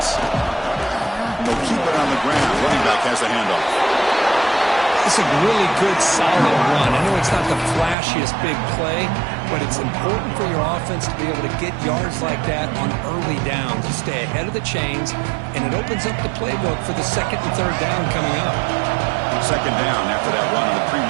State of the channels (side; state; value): left; drops out; at 8.0 s